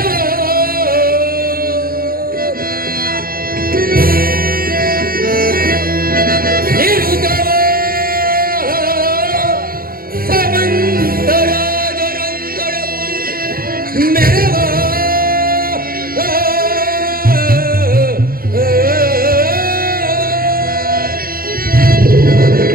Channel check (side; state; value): left; late; 0.42 ms